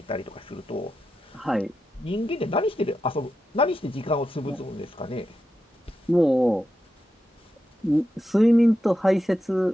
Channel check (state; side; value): normal; both; correlation 0.88